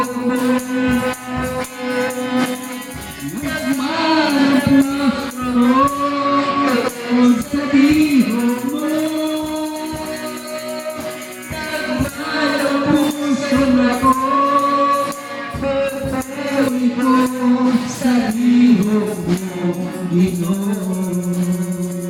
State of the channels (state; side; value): identical; both; correlation 1.00